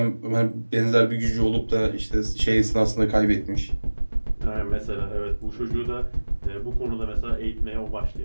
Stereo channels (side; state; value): both; inverted; correlation -1.00